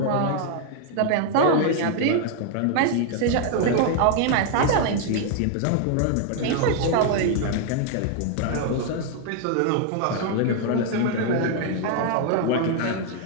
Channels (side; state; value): both; different; correlation 0.00